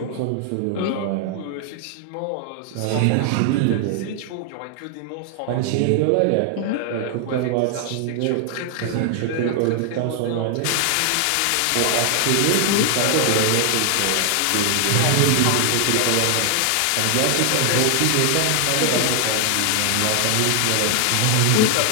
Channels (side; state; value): both; different; correlation 0.00